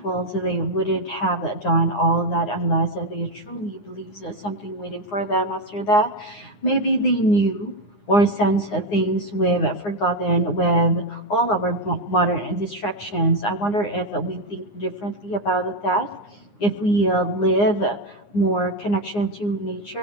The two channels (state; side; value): late; right; 9.7 ms